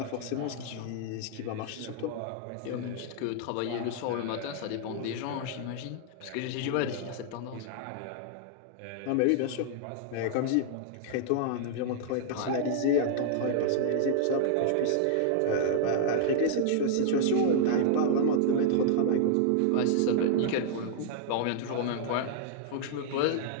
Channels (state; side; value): different; both; correlation -0.01